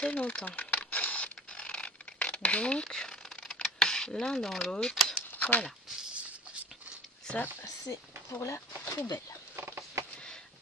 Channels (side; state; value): both; normal; correlation 0.44